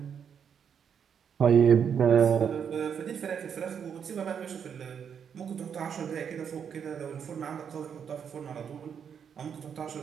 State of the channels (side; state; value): left; quieter; 7.6 dB